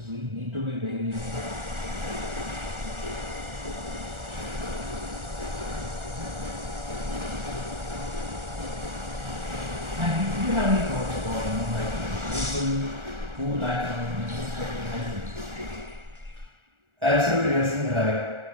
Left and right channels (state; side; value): late; left; 1.4 ms